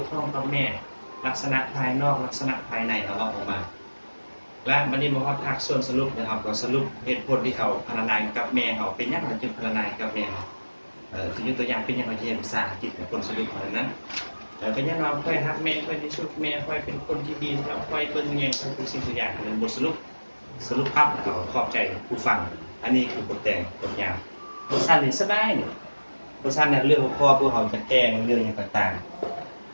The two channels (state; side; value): inverted; both; correlation -1.00